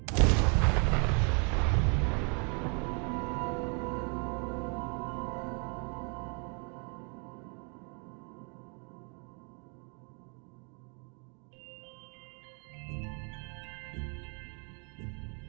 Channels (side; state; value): left; quieter; 36.8 dB